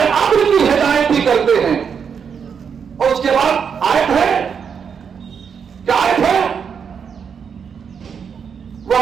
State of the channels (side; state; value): left; quieter; 6.8 dB